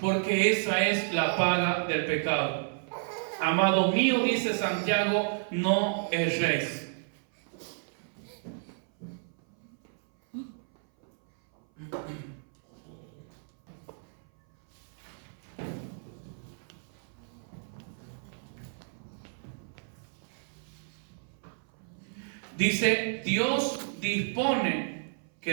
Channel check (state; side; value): silent; left; 57 dB below the other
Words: esa es la paga del pecado. Amado mío, dice Santiago, no erréis. Dice, Dios dispone